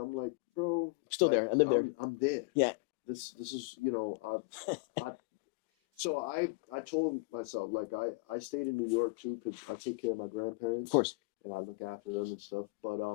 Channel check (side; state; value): right; quieter; 27.9 dB